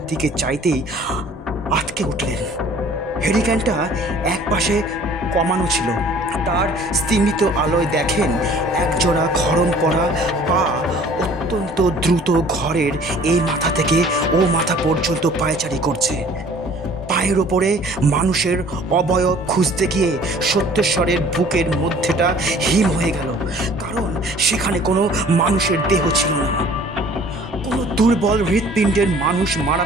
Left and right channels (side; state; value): both; normal; correlation 0.52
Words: দিকে চাইতেই আটকে উঠলেন। হেরিকেনটা এক পাশে কমানো ছিল। তার স্তিমিত আলোয় দেখেন একজোড়া খড়ম পরা পা অত্যন্ত দ্রুত ঘরের এই মাথা থেকে ও মাথা পর্যন্ত পায়চারি করছে। পায়ের ওপরে মানুষের অবয়ব খুঁজতে গিয়ে সত্যেশ্বরের বুকের মধ্যেটা হিম হয়ে গেল, কারণ সেখানে কোনো মানুষের দেহ ছিল না। কোনো দুর্বল হৃৎপিণ্ডের মানুষ মারা